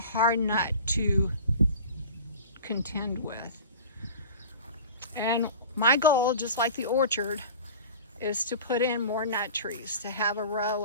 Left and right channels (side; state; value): both; inverted; correlation -0.39